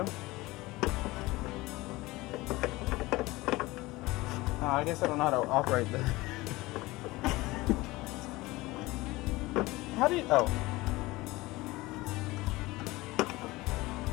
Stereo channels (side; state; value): right; quieter; 20.4 dB